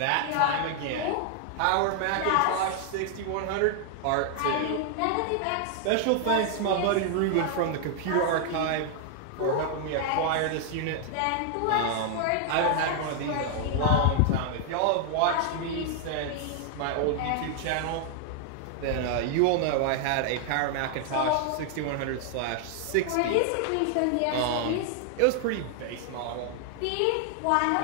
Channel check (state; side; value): different; both; correlation 0.00